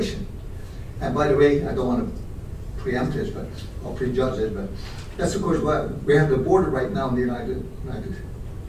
And by the way, I don't want to preempt this, or prejudge it, but that's of course why we have the border right now in the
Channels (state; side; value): identical; both; correlation 1.00